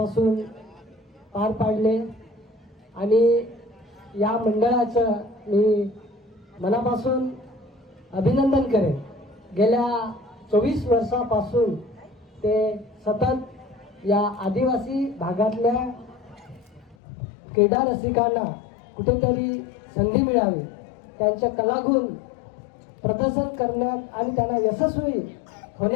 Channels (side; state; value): right; drops out; at 16.9 s